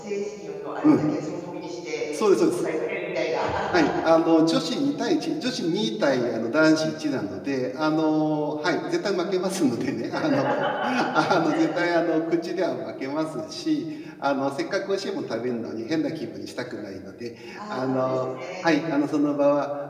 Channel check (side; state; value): both; identical; correlation 1.00